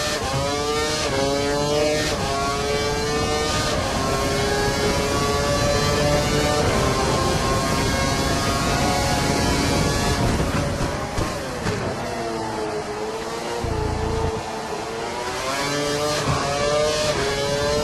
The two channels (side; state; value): both; identical; correlation 1.00